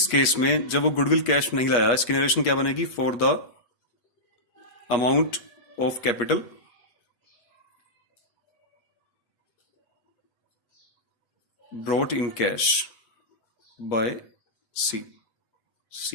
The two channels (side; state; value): right; late; 8.5 ms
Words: केस में जब वो गुडविल कैश में नहीं लाया, इसकी नरेशन क्या बनेगी, for the amount of capital brought in cash by